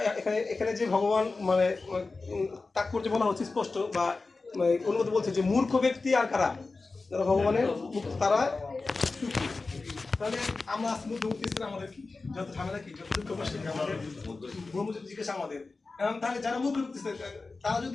এখানে যে ভগবান মানে তাৎপর্য বলা হচ্ছে স্পষ্ট, বা অনুমতি বলছে যে মূর্খ ব্যক্তি আর কারা, যারা ভগবানের তারা সুখী। তাহলে আমরা আজকে মধ্যবর্তী ছিলাম, আমাদের কি যত ঝামেলা, কি যত দুঃখ কষ্ট আমাদের ব্রহ্মজ্যোতি জিজ্ঞাসা আমাদের। তাহলে যারা মূর্খ ব্যক্তি তারা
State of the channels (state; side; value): quieter; right; 3.8 dB